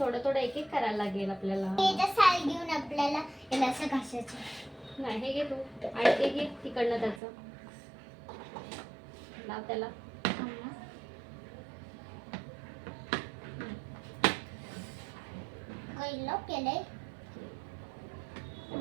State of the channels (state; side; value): drops out; left; at 7.2 s